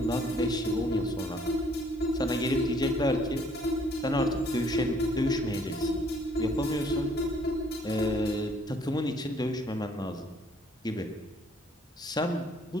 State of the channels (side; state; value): both; normal; correlation 0.62